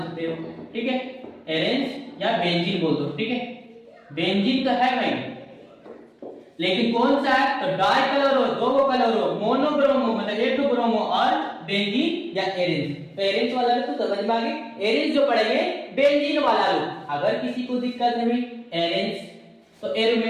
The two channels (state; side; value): identical; both; correlation 1.00